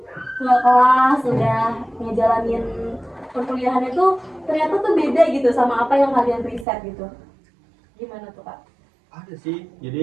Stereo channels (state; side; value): drops out; left; at 6.7 s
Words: ke kelas, udah ngejalanin perkuliahannya tuh ternyata tuh beda gitu sama apa yang kalian riset gitu. Gimana tuh Kak? Ada sih,